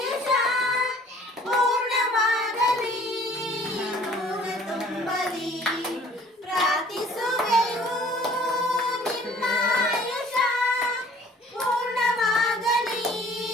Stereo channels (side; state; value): both; normal; correlation 0.53